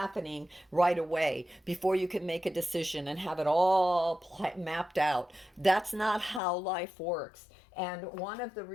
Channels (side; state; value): right; drops out; at 6.4 s